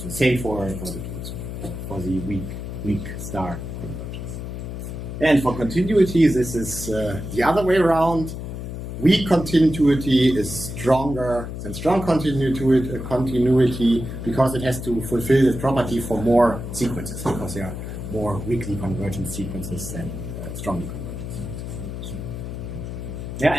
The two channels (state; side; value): noise; left; hum, 7 dB below the sound